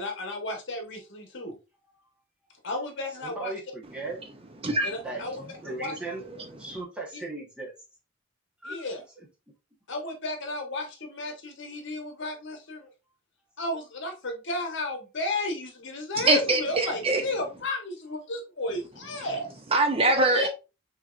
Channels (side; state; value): both; normal; correlation -0.08